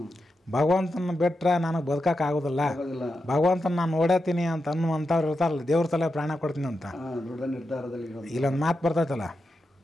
ಭಗವಂತನ ಬಿಟ್ರೆ ನನಗೆ ಬದುಕಕ್ಕೆ ಆಗೋದಿಲ್ಲ, ಆಗೋದಿಲ್ಲ. ಭಗವಂತನ ನಾನು ನೋಡತ್ತೀನಿ ಅಂತ ಅನ್ನುವಂಥವ್ರು ಇರ್ತಾರಲ್ಲ, ದೇವ್ರ ಸಲ ಪ್ರಾಣ ಕೊಡ್ತೀನಿ ಅಂತ. ದೃಢ ನಿರ್ಧಾರದಲ್ಲಿ ಇರೋದು. ಇಲ್ಲೊಂದು ಮಾತು ಬರ್ತೈತಲ್ಲ,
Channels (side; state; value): both; normal; correlation 0.88